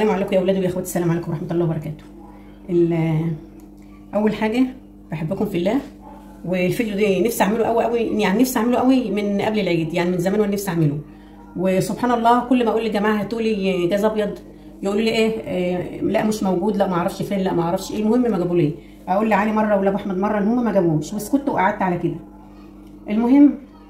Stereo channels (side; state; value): both; identical; correlation 1.00